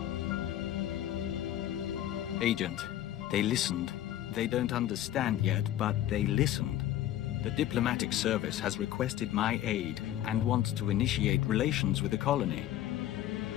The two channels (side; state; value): right; quieter; 12.7 dB